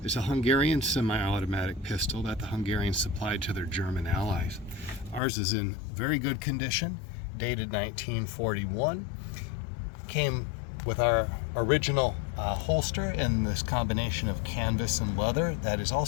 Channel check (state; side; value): drops out; right; at 5.2 s